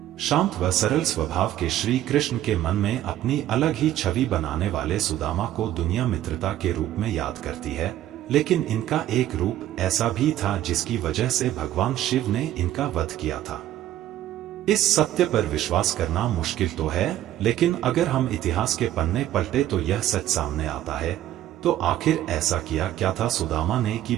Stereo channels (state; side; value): quieter; left; 12.9 dB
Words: शांत व सरल स्वभाव के श्री कृष्ण के मन में अपनी अलग ही छवि बनाने वाले सुदामा को दुनिया मित्रता के रूप में याद करती है, लेकिन इनका एक रूप ऐसा भी था जिसकी वजह से भगवान शिव ने इनका वध किया था। इस सत्य पर विश्वास करना मुश्किल तो है, लेकिन अगर हम इतिहास के पन्ने पलटे तो यह सच सामने आता है। तो आखिर ऐसा किया क्या था सुदामा ने कि